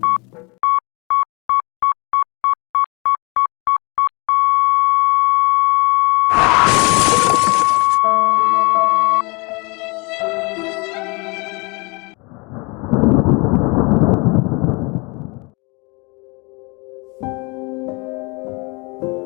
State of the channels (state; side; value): quieter; right; 28.5 dB